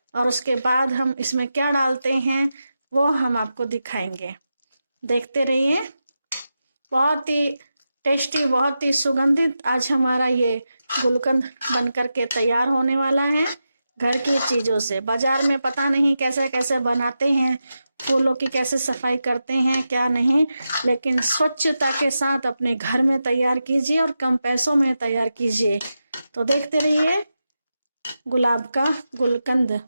और उसके बाद हम इसमें क्या डालते हैं वो हम आपको दिखाएंगे, देखते रहिए। बहुत ही टेस्टी, बहुत ही सुगंधित आज हमारा ये गुलकंद बन करके तैयार होने वाला है घर की चीजों से। बाजार में पता नहीं कैसे कैसे बनाते हैं, फूलों की कैसे सफाई करते हैं क्या नहीं, लेकिन स्वच्छता के साथ अपने घर में तैयार कीजिए और कम पैसों में तैयार कीजिए। तो देखते रहिए गुलाब का गुलकंद।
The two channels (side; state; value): both; inverted; correlation -0.90